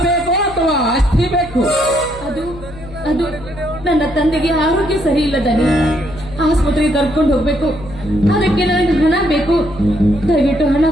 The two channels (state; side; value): noise; left; hum, 16 dB below the sound